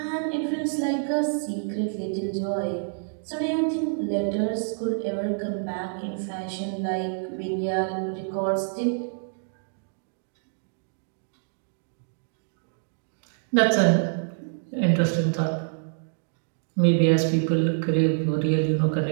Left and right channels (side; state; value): left; silent; digital silence